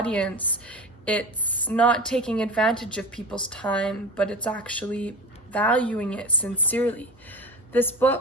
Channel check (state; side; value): normal; both; correlation 0.29